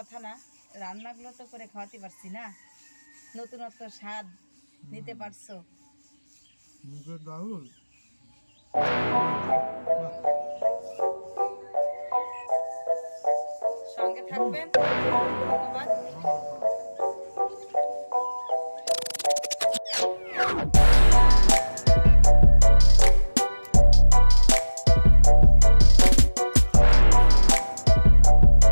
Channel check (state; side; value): inverted; both; correlation -1.00